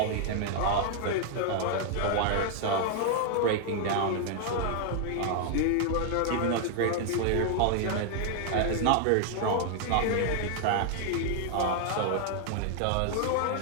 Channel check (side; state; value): both; different; correlation 0.00